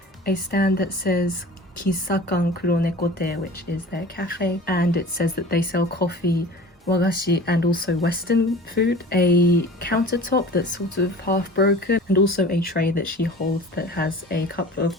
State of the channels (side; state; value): both; normal; correlation 0.40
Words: a stand that says Kisakan Kuronekote, which is their cafe, and it says that they sell coffee, wagashi, and also Western food, a countertop that's sort of half broken, and also a tray that she holds that has a cup of